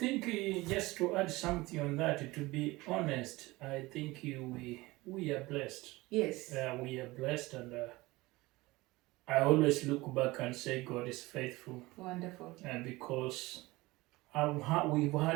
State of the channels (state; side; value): quieter; left; 20.7 dB